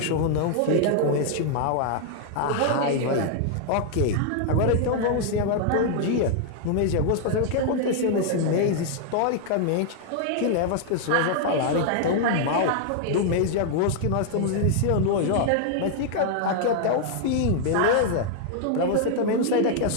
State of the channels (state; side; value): different; both; correlation 0.00